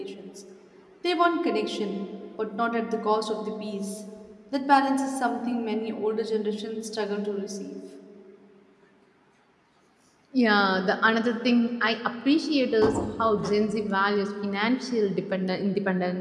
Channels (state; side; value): identical; both; correlation 1.00